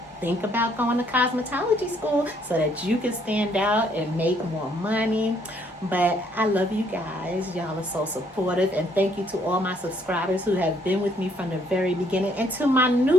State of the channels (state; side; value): normal; both; correlation 0.67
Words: think about going to cosmetology school so that you can stand out and make more money. But I love you guys. Y'all are so supportive. And thank you to all my subscribers who have been with me from the very beginning. And to my